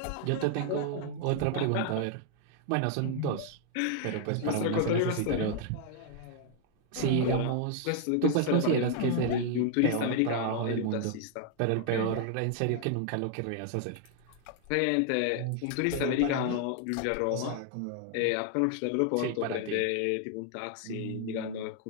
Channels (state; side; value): different; both; correlation 0.00